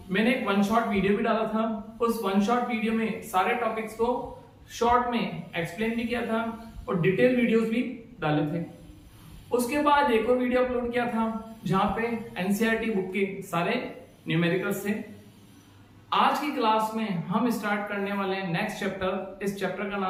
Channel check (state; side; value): identical; both; correlation 1.00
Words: मैंने एक वन शॉट वीडियो भी डाला था। उस वन शॉट वीडियो में सारे टॉपिक्स को शॉर्ट में एक्सप्लेन भी किया था और डिटेल वीडियोस भी डाले थे। उसके बाद एक और वीडियो अपलोड किया था जहां पे एनसीईआरटी बुक के सारे न्यूमेरिकल्स थे। आज की क्लास में हम स्टार्ट करने वाले हैं नेक्स्ट चैप्टर। इस चैप्टर का